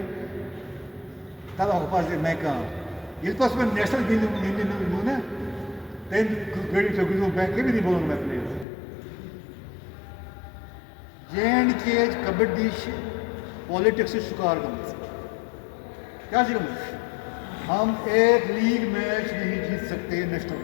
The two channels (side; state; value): right; drops out; at 8.7 s